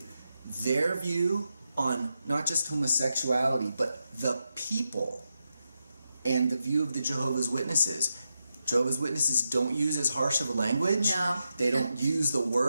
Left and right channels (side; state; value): both; inverted; correlation -0.86